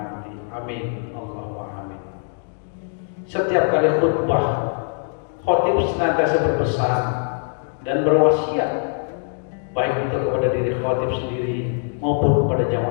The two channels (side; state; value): right; silent; 58 dB below the other